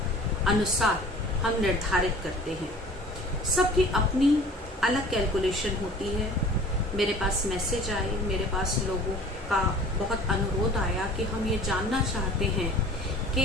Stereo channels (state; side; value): normal; both; correlation 0.46